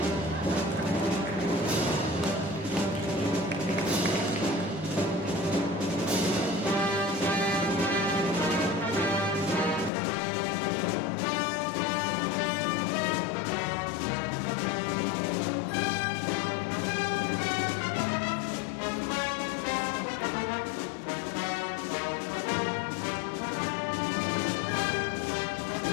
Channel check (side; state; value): right; drops out; at 9.9 s